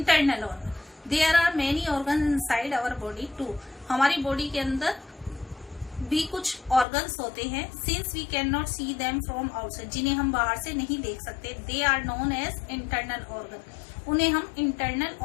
organ. There are many organ inside our body too. हमारी बॉडी के अंदर भी कुछ ऑर्गन्स होते हैं. Since we can not see them from outside. जिन्हें हम बाहर से नहीं देख सकते. They are known as internal organ. उन्हें हम इंटरनल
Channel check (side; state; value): right; drops out; at 6.9 s